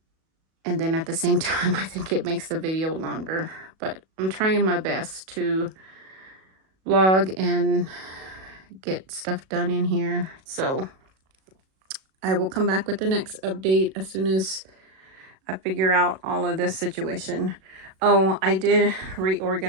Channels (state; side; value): late; left; 37 ms